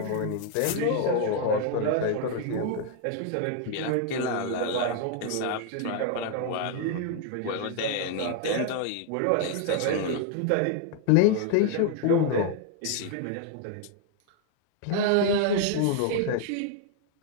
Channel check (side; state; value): both; different; correlation 0.00